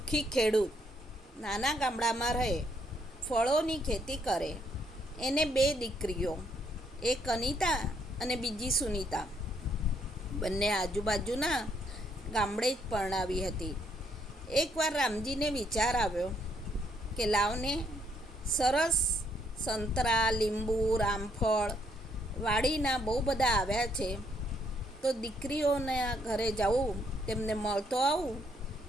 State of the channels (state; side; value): normal; both; correlation 0.71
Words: ખેડૂત, નાના ગામડામાં રહે, ફળોની ખેતી કરે. એને 2 દીકરીઓ, એક અનિતા અને બીજી સુનિતા. બંને આજુબાજુના ગામડે જ પરણાવી હતી. એકવાર રામજીને વિચાર આવ્યો કે લાવને, સરસ સંતરા, લીંબુ, રામફળ વાડીના બહુ બધા આવ્યા છે, તો દીકરીઓના ઘરે જાઉં, તેમને મળતો આવું